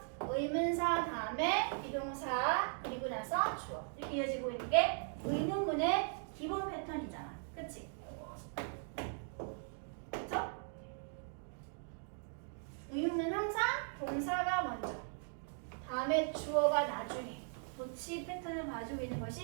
의문사 다음에 비동사 그리고 나서 주어 이렇게 이어지고 있는 게 의문문의 기본 패턴이잖아. 그치? 그쵸? 의문문 항상 동사가 먼저 다음에 주어가 나중에 도치 패턴을 가지고 있는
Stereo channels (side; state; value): left; silent; 52 dB below the other